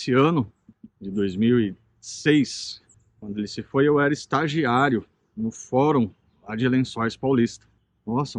ano de 2006, quando ele se foi, eu era estagiário no fórum lá de Lençóis Paulista. Nossa,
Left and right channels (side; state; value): both; identical; correlation 1.00